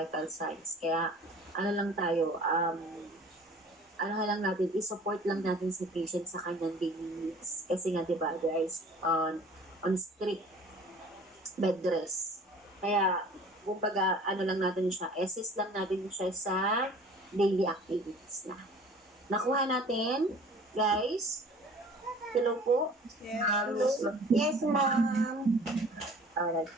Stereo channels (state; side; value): normal; both; correlation 0.48